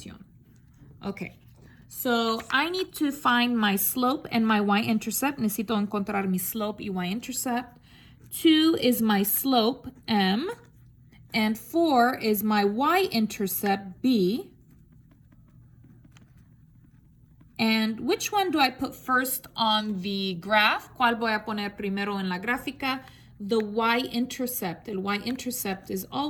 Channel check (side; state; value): both; identical; correlation 1.00